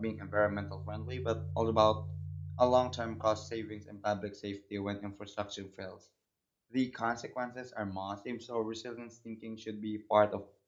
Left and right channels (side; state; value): both; identical; correlation 1.00